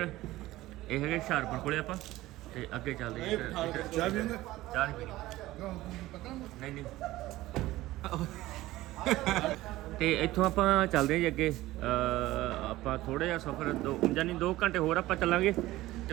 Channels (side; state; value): left; quieter; 17.0 dB